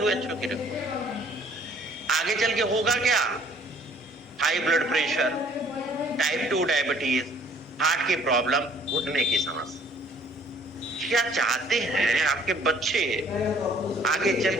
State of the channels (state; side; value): normal; both; correlation 0.58